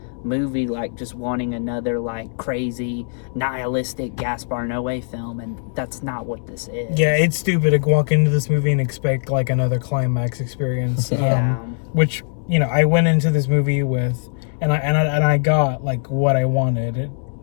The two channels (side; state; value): right; silent; 65 dB below the other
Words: movie like just wanting another like crazy nihilistic Gaspar Noe film, and that's not what this is. Yeah, it's stupid to walk into this movie and expect like another climax experience. Which, you know, I went into this movie with, and I got like what I wanted.